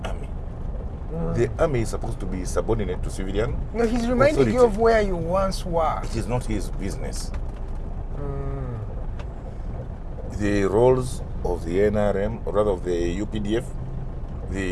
army. The army is supposed to be subordinate to civilian. No, he's reminding authority. you of where you once were. It is not his business. The roles of the NRM, or rather of the UPDF,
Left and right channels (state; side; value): identical; both; correlation 1.00